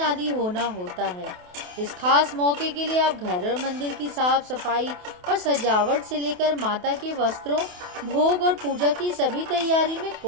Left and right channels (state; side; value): late; left; 28 ms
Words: होना होता है। इस खास मौके के लिए आप घर और मंदिर की साफ सफाई और सजावट से लेकर माता के वस्त्रों, भोग और पूजा की सभी तैयारी में